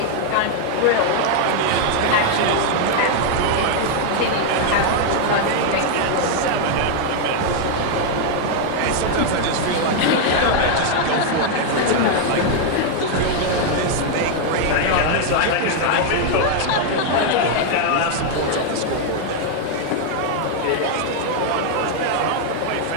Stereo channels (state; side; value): different; both; correlation 0.00